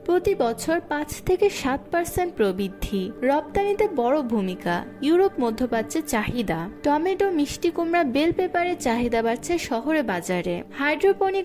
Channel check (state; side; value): identical; both; correlation 1.00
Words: প্রতি বছর 5 থেকে 7% প্রবৃদ্ধি। রপ্তানিতে বড় ভূমিকা। ইউরোপ মধ্যপ্রাচ্যে চাহিদা। টমেটো, মিষ্টি কুমড়া, বেল পেপারের চাহিদা বাড়ছে শহরে বাজারে। হাইড্রোপনিক